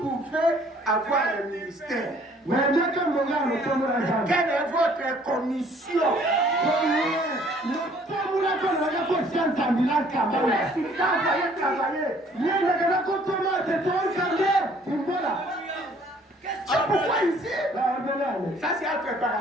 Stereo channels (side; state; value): both; normal; correlation 0.58